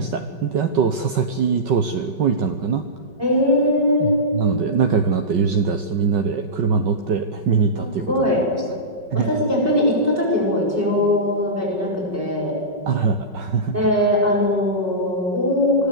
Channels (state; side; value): late; left; 5.3 ms